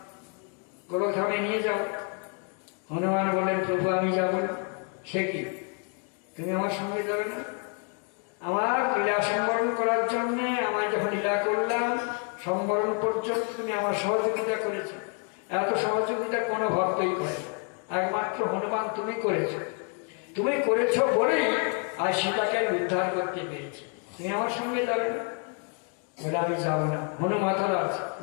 গোলকধামে নিয়ে যাও। হনুমান বললেন, প্রভু আমি যাব না। সে কি, তুমি আমার সঙ্গে যাবে না? আমার লীলা সম্বরণ করার জন্য সম্বরণ পর্যন্ত তুমি আমার সহযোগিতা করেছো। এত সহযোগিতা কোনো ভক্তই করে, একমাত্র হনুমান তুমি করেছো। তুমি করেছো বলেই আজ সীতাকে আমি উদ্ধার করতে পেরেছি। তুমি আমার সঙ্গে যাবে না? বলে আমি যাবো না। হনু মাথা আছে,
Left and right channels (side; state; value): right; quieter; 39.5 dB